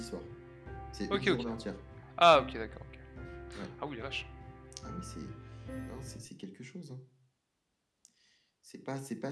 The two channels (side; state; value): both; identical; correlation 1.00